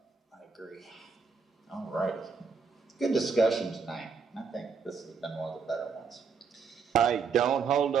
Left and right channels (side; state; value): left; quieter; 5.4 dB